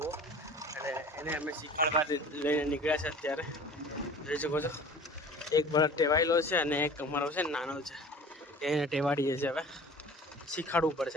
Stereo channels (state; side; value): normal; both; correlation 0.43